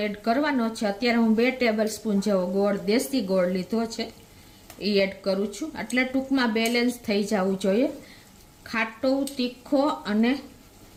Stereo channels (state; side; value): identical; both; correlation 1.00